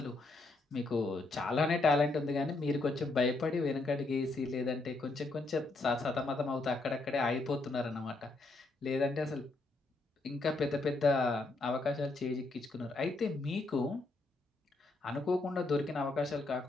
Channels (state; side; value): quieter; right; 3.2 dB